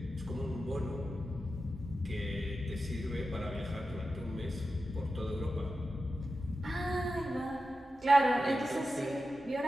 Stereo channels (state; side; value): normal; both; correlation 0.91